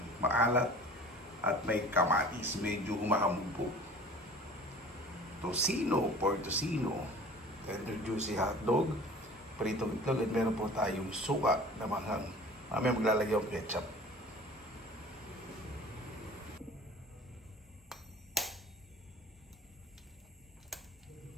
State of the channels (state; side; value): normal; both; correlation 0.44